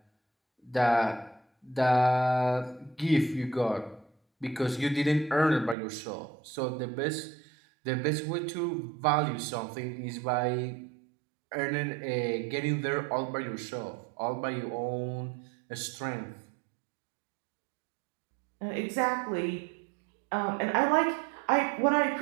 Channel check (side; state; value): left; drops out; at 5.8 s